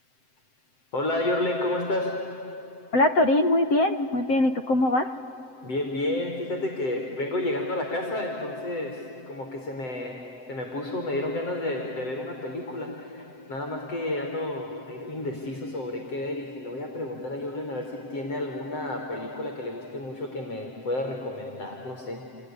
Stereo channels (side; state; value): right; late; 7.8 ms